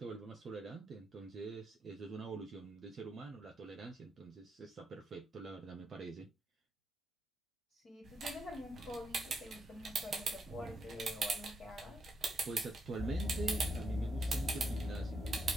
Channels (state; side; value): normal; both; correlation 0.80